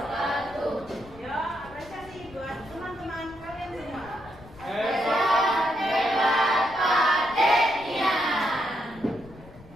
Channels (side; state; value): left; noise; rumble, 20 dB below the sound